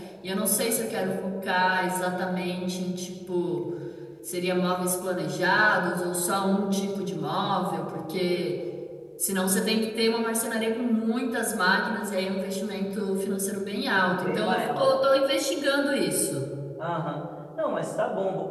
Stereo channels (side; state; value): both; identical; correlation 1.00